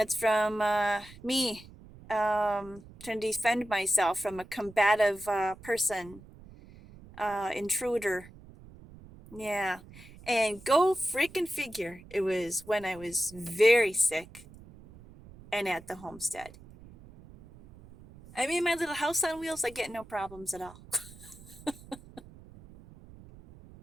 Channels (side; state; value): right; noise; rumble, 20 dB below the sound